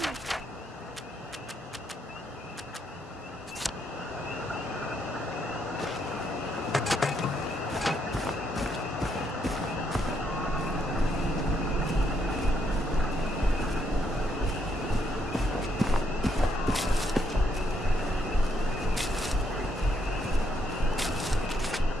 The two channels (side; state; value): both; normal; correlation 0.75